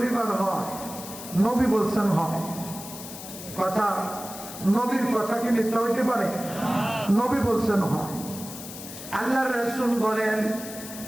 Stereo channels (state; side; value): noise; left; hiss, 12 dB below the sound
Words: হয়? নবী বলছেন হয়। কথা, নবীর কথা কি মিথ্যা হইতে পারে? নবী বলছেন হয়। আল্লাহর রাসূল বলেন